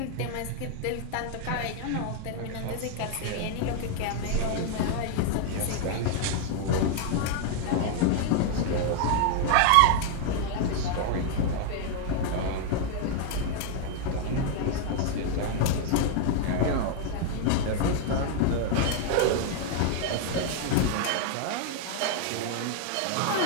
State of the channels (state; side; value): different; both; correlation 0.00